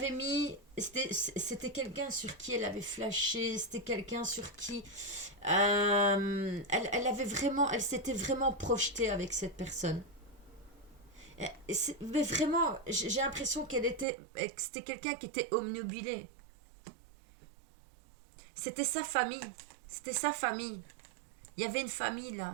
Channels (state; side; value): drops out; left; at 14.1 s